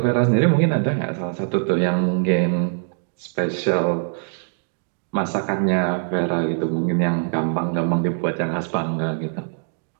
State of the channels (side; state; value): left; silent; digital silence